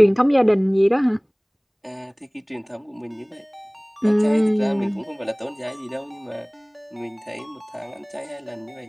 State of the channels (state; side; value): identical; both; correlation 1.00